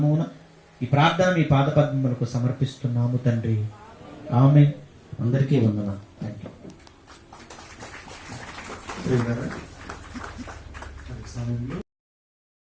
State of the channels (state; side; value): identical; both; correlation 1.00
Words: ఈ ప్రార్థన మీ పాదపద్మములకు సమర్పిస్తున్నాము తండ్రి. ఆమేన్. అందరికీ వందనాలు. థాంక్యూ. సమయంలో